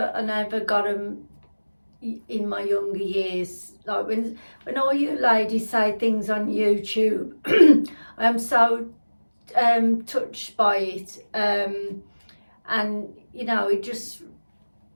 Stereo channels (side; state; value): both; inverted; correlation -1.00